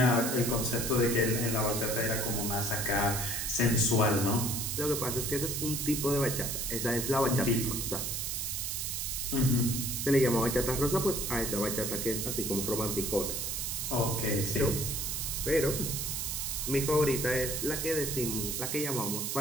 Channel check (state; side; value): noise; right; hiss, 2 dB below the sound